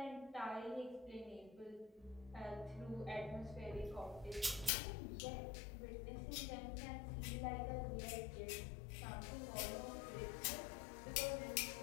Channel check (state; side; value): drops out; right; at 4.7 s